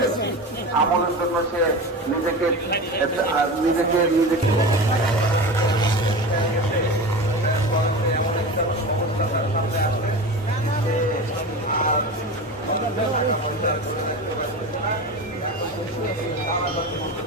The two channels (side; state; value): both; normal; correlation 0.28